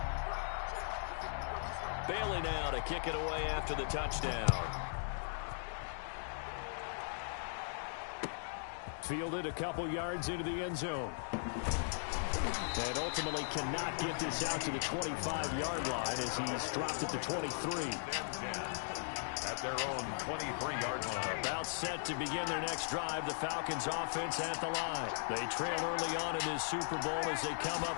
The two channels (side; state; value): right; silent; digital silence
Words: Bailey now to kick it away after the touchdown. Fielded a couple yards into the end zone. And ultimately cannot get this out to the 25-yard line as he's dropped at the 23. At their own 23-yard line. About set to begin their next drive. The Falcons offense at the line. They trail early on in this Super Bowl as they come